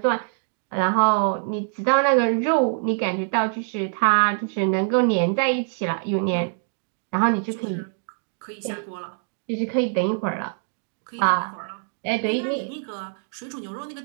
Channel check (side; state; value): left; silent; digital silence